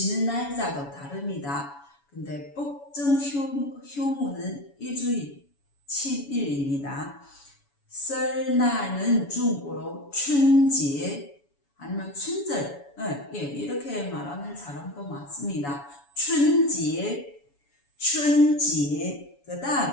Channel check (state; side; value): late; right; 7.1 ms